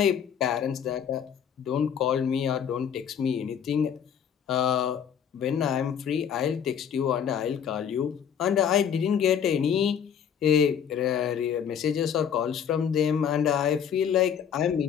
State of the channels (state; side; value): quieter; right; 8.2 dB